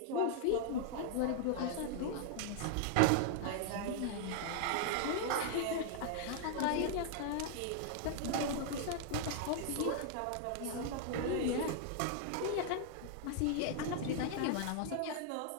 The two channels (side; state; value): both; different; correlation 0.00